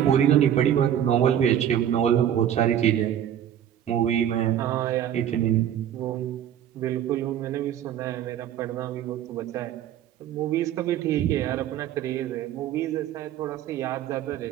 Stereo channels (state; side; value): quieter; left; 10.4 dB